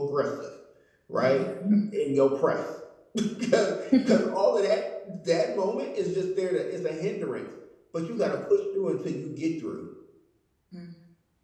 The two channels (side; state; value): both; identical; correlation 1.00